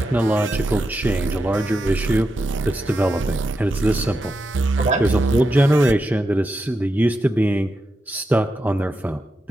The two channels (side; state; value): both; normal; correlation 0.87